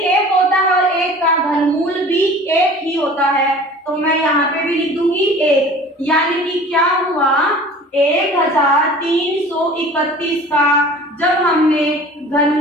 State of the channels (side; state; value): both; normal; correlation 0.44